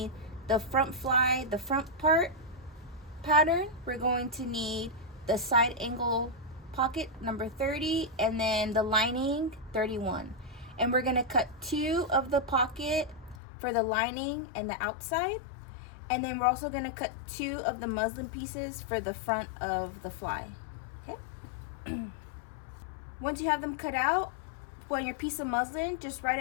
the front fly, the front part pattern. We're going to need the side angle pocket number 30, and then the lining 31. And we're gonna cut 2 of the pocket for the lining and the outside. And then we're also gonna cut 2 of the muslin pieces for the front of the fly. Okay. Once you have them cut out, on your piece of muslin, just write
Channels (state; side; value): drops out; right; at 13.4 s